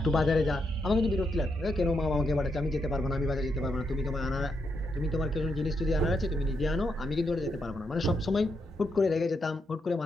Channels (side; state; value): both; normal; correlation 0.81